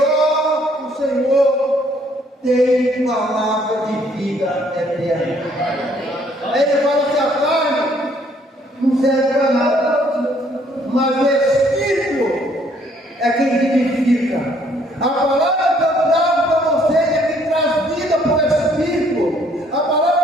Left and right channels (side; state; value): both; normal; correlation 0.64